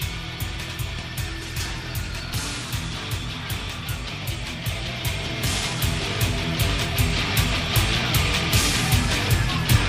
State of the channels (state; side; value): identical; both; correlation 1.00